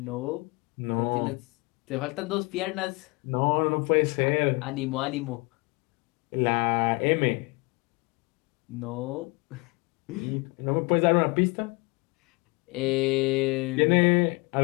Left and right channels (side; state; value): right; quieter; 27.6 dB